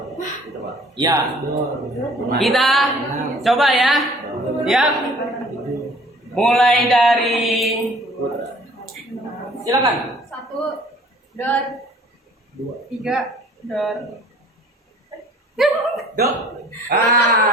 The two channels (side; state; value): both; normal; correlation 0.52